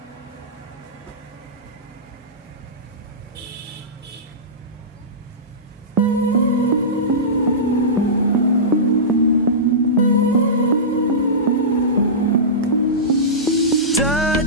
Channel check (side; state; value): both; normal; correlation -0.18